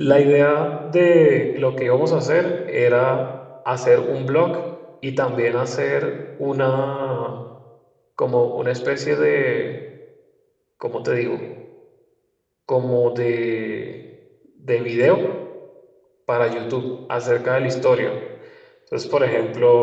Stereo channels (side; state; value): both; identical; correlation 1.00